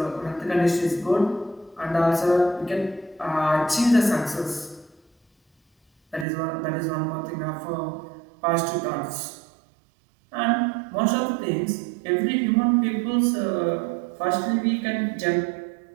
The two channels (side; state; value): left; drops out; at 6.2 s